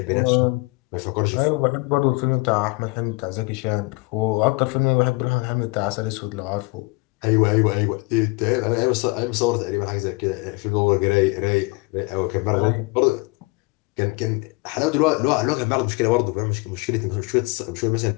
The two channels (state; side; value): quieter; right; 27.4 dB